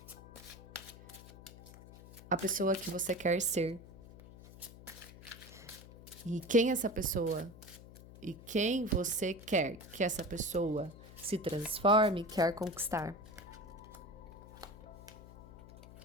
a pessoa que você quer ser. E quem essa pessoa e quem você quer que essa pessoa se transforme, quer conquistar.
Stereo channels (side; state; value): left; noise; hum, 17 dB below the sound